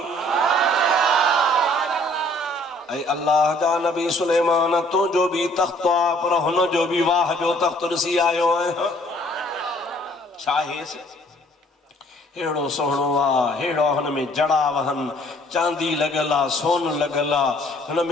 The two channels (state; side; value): normal; both; correlation 0.59